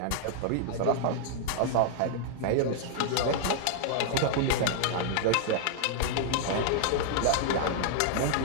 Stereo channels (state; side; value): different; both; correlation -0.01